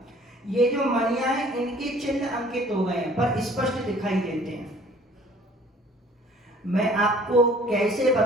ये जो मणियां हैं इनके चिन्ह अंकित हो गए हैं, पर स्पष्ट दिखाई देते हैं। मैं आपको कैसे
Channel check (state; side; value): normal; both; correlation 0.53